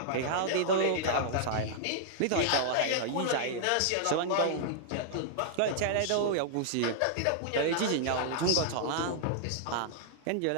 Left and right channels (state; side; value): different; both; correlation -0.01